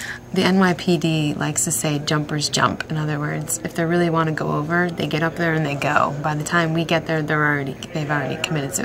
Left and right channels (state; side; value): identical; both; correlation 1.00